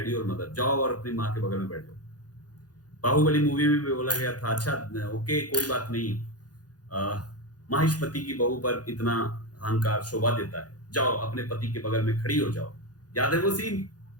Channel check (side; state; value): right; late; 0.69 ms